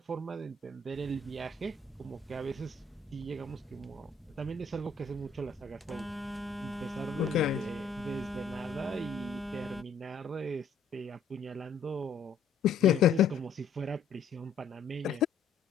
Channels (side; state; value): right; quieter; 4.8 dB